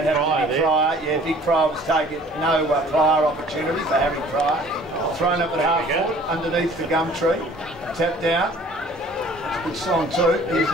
Pryor there. Yeah, Big Pryor was taken. No prior opportunity for Harry Pryor. Thrown up at half forward, underneath the gum tree. Tapped down. It's a good song too. Here's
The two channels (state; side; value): normal; both; correlation 0.52